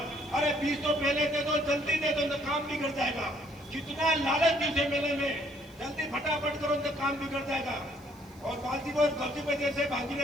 अरे 20 तो पहले दे दो, जल्दी दे दो, तो काम बिगड़ जाएगा। कितना लालच थी उसे मेले में, जल्दी फटाफट करो तो काम बिगड़ जाएगा। और बाजी बहुत गलती पे जैसे बाजी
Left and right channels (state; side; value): noise; left; hiss, 30 dB below the sound